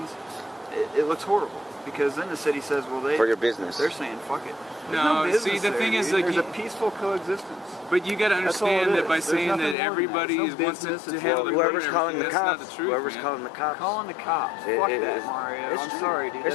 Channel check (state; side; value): drops out; right; at 9.8 s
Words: it looks horrible. Because then the city says, well, for your business. They're saying, fuck it. No, see, the thing is, like, there's a peaceful coexistence. But you got to understand that by saying that everybody wants to handle the whoever's calling the cops, that's not the truth, whoever's calling the cops. Calling the cops. Fuck that, Mario. I'm sorry, dude.